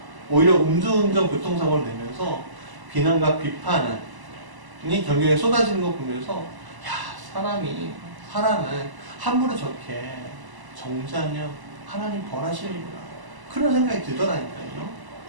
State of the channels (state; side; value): late; left; 1.0 ms